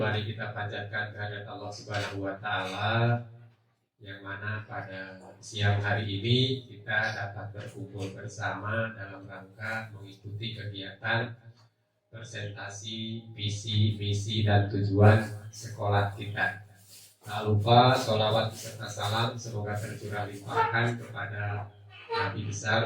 kita panjatkan kehadirat Allah Subhanahu wa taala yang mana pada siang hari ini kita dapat berkumpul bersama dalam rangka mengikuti kegiatan presentasi visi, misi dan tujuan sekolah kita. Tak lupa sholawat beserta salam semoga tercurah limpahkan kepada Nabi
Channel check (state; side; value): identical; both; correlation 1.00